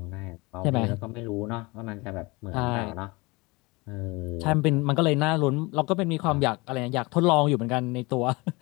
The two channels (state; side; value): quieter; right; 25.1 dB